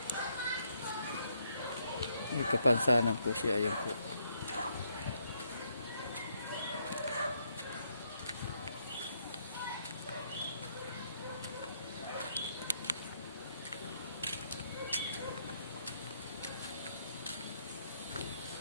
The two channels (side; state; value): both; inverted; correlation -0.73